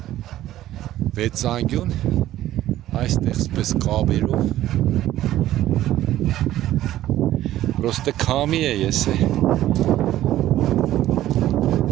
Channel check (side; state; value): left; quieter; 13.8 dB